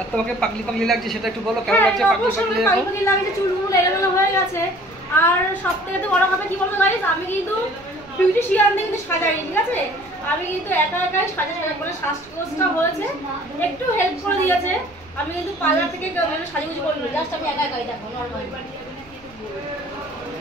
তোমাকে পাগলি লাগছে, সেটা একটু বলো, কেমন লাগছে? পাগলি লাগছে, চুলগুলো এলোমেলো হয়ে গেছে। আর সবথেকে তো বড় কথা কি বলবো গাইস, আমি কিন্তু বিউটিশিয়ান দিয়ে কিন্তু সাজাইনি, ঠিক আছে? আমি কিন্তু একাই সাজাই, মানে শ্বাসকষ্টটা হয়েছে, একটু হেল্প করে দিয়েছে। আমি কিন্তু পার্লার থেকে সাজুগুজু করিনি, জাস্ট আমি একাই দেখো নরমাল।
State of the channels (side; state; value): right; noise; rumble, 27 dB below the sound